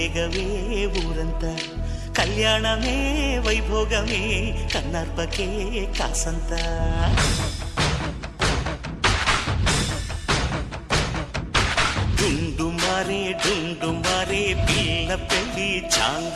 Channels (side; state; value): both; identical; correlation 1.00